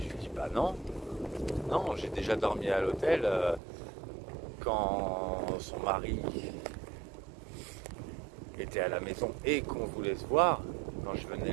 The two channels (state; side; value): drops out; left; at 3.6 s